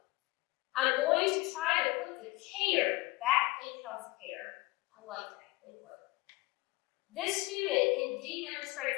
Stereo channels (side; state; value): right; quieter; 22.2 dB